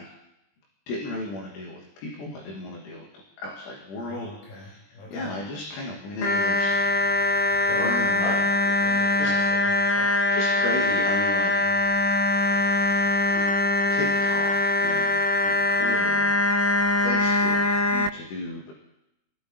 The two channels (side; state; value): right; late; 21 ms